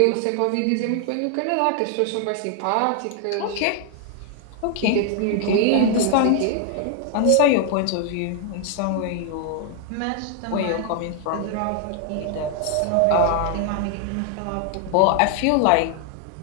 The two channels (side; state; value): both; different; correlation 0.00